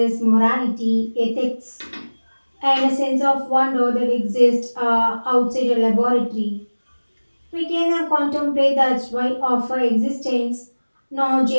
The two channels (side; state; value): both; inverted; correlation -1.00